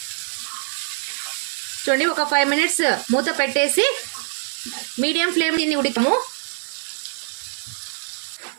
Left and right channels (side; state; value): left; silent; 61 dB below the other